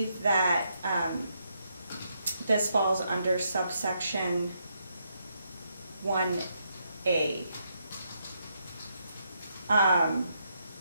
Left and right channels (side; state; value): both; inverted; correlation -0.78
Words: that this falls under subsection 1A.